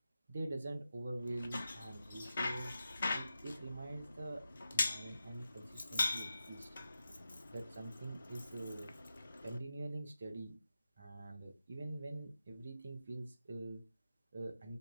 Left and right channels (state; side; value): inverted; both; correlation -0.91